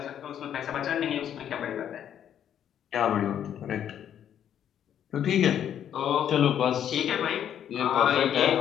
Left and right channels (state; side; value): quieter; right; 9.7 dB